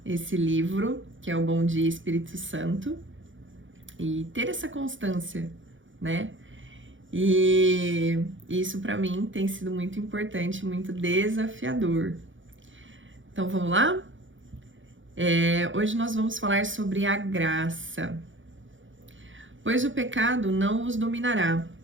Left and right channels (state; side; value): late; left; 0.56 ms